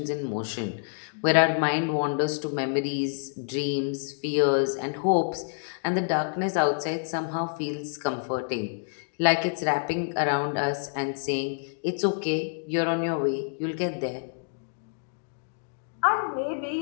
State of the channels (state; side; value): silent; right; digital silence